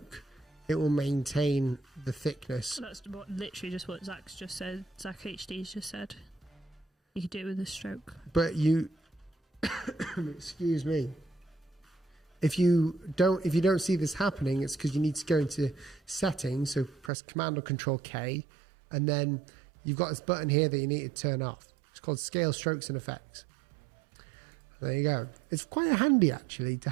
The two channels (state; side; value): drops out; left; at 17.1 s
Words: it will maintain the thickness. That's literally just what Zach's just said. Zach HD's just said. You could do it with a stroke. But you, excuse me. If you don't see this happening, it's because you need to go into settings. So press Command or Control K, and then you've got this button here that you need to turn off. It's called Scale Strokes and Effects. There you go. It's quite handy actually to